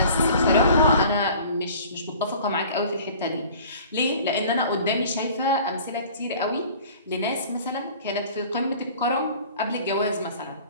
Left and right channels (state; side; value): inverted; both; correlation -0.47